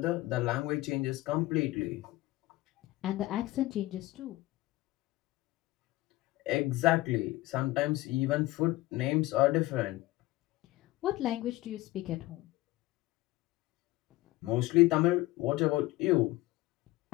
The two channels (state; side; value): quieter; right; 18.6 dB